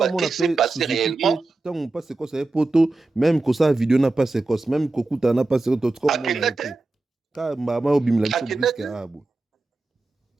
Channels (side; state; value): left; quieter; 3.1 dB